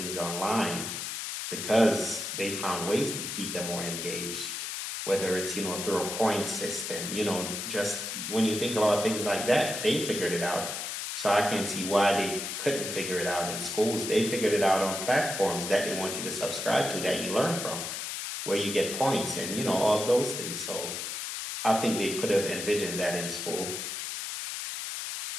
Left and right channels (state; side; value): noise; left; hiss, 5 dB below the sound